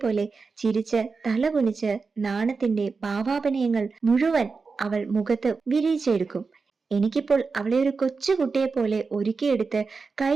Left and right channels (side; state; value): left; quieter; 4.6 dB